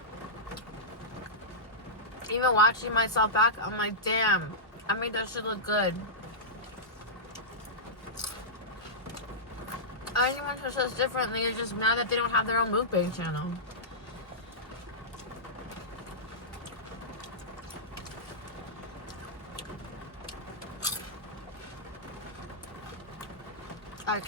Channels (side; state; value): both; normal; correlation -0.14